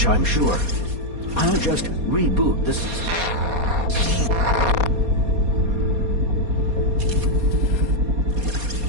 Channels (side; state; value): left; late; 4.2 ms